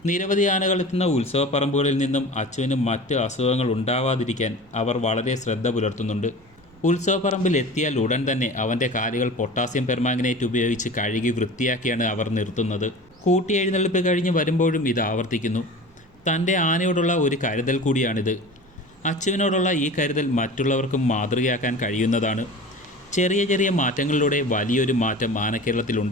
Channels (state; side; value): noise; right; rumble, 29 dB below the sound